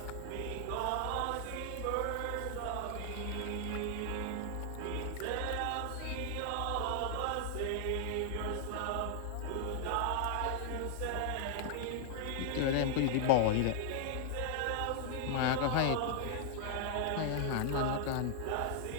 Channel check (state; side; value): different; both; correlation 0.00